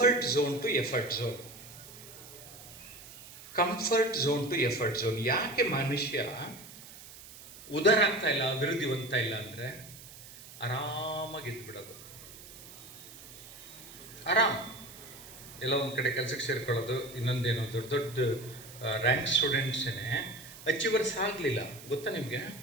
zone to effort zone. Comfort zone to effort zone. ಯಾಕೆ ಮನುಷ್ಯ ಉದಾರ ಆಗ್ತಾ ಇಲ್ಲ, ಅಭಿವೃದ್ಧಿ ಹೊಂದ್ತಾ ಇಲ್ಲ ಅಂದರೆ ಆರಾಮಾಗಿ ಇದ್ಬಿಡೋದು. ಆರಾಮ್ ಎಲ್ಲ ಒಂದು ಕಡೆ ಕೆಲಸಕ್ಕೆ ಸೇರ್ಕೊಳ್ಳೋದು. ಇನ್ನೊಂದೇನು, ದೊಡ್ಡ ದೊಡ್ಡ ರ್ಯಾಂಕ್ ಸ್ಟೂಡೆಂಟ್ಸೇ ಅಚೀವರ್ಸ್ ಆಗಲಿಲ್ಲ ಗೊತ್ತಾ ನಿಮಗೆ?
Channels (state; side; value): noise; right; hiss, 17 dB below the sound